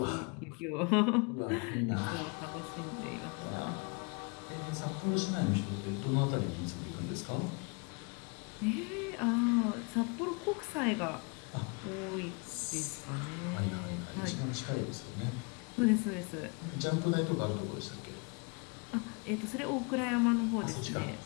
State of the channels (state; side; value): quieter; right; 32.6 dB